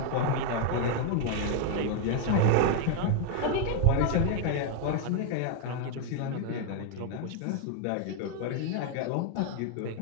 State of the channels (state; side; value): different; both; correlation 0.00